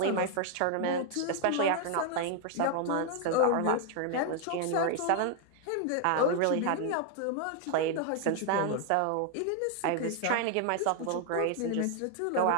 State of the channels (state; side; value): different; both; correlation 0.00